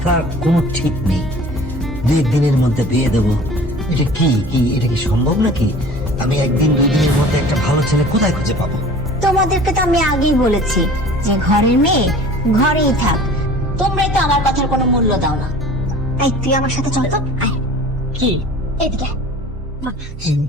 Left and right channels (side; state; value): both; normal; correlation 0.44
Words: কোনো ঠিক নেই। 2 দিনের মধ্যে বিয়ে দেবো, এটা কি এটা কি সম্ভব নাকি? আমি 1-2 দিনের মধ্যে একটা ভালো ছেলে কোথায় খুঁজে পাবো? তোমাদেরকে তো আমি আগেই বলেছি যে ঘরের মেয়ে ঘরেই থাক। তোমরাই তো আমার কথার কোনো মূল্য দাও না। এই তুই আমার সাথে চল তো, আয় কি? এদিকে।